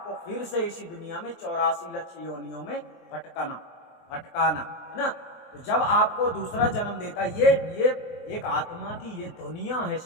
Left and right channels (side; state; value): right; late; 23 ms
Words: फिर से इसी दुनिया में 84 लक्ष योनियों में भटकाना, है ना। तो जब आपको दूसरा जन्म देता है, ये एक आत्मा की ये दुनिया है